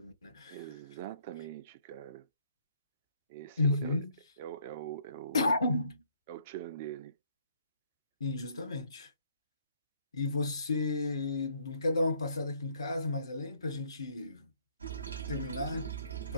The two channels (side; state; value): both; inverted; correlation -0.65